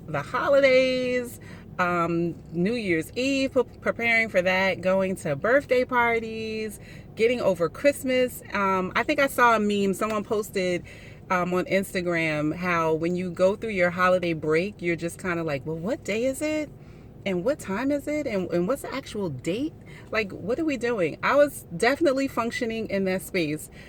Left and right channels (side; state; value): both; identical; correlation 1.00